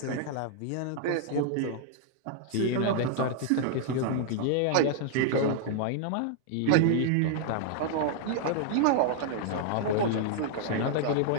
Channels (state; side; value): different; both; correlation -0.01